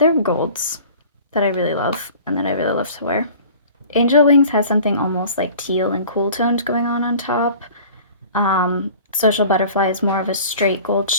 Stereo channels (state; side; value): inverted; both; correlation -0.45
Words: golds that I really love and that I really love to wear. Angel Wings has something almost like teal and cool tones going on top. Social Butterfly is more of a straight gold